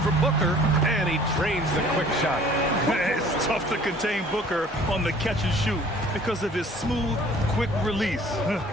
Booker. And he drains the quick shot. It's tough to contain Booker on the catch and shoot because of his smooth, quick release.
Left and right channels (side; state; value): both; normal; correlation 0.52